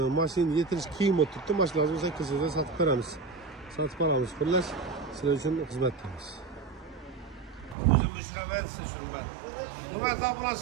Mashina yetirish qiyin bo'lib turibdi. Mashinamizni 8 yilda sotib beramiz. Sotib olamiz. Xullas, sizlar uchun xizmatdamiz. O'zim mushraman siz hurmat. Hurmatli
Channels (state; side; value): drops out; left; at 7.8 s